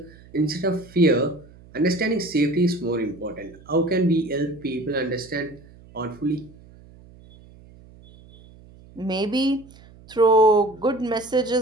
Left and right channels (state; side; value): noise; right; hum, 23 dB below the sound